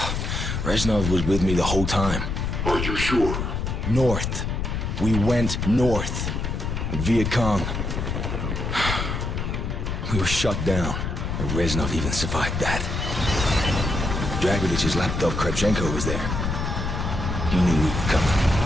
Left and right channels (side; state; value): left; noise; rumble, 2 dB below the sound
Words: Reznov was with me the whole time. Are you sure? North. We went north. Viet Cong. We were shut down. And Reznov even survived that. Dragovich's lapdog Kravchenko was there. He knew we were coming.